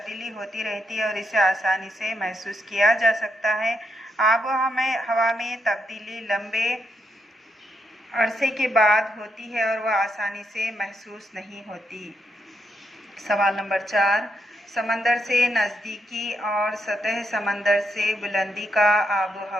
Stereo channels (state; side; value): normal; both; correlation 0.80